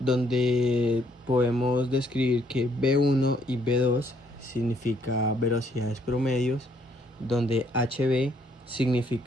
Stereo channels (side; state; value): both; normal; correlation 0.68